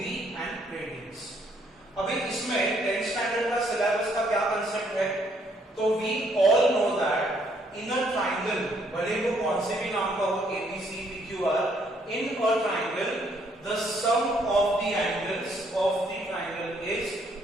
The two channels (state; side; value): normal; both; correlation 0.68